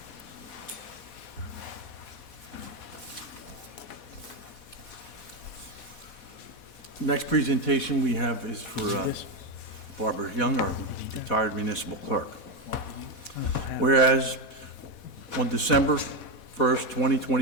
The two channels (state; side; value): late; right; 4.1 ms